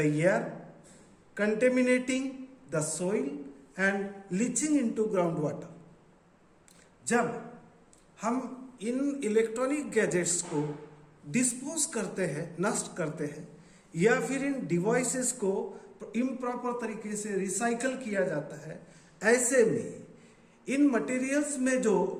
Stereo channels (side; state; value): both; identical; correlation 1.00